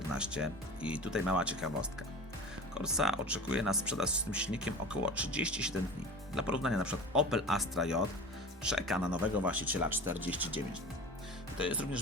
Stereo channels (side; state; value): both; normal; correlation 0.35